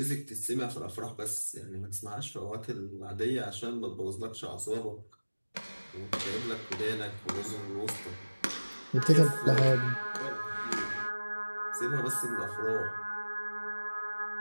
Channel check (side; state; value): both; inverted; correlation -1.00